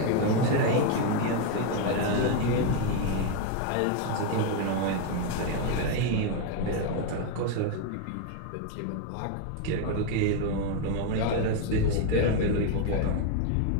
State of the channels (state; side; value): different; both; correlation 0.01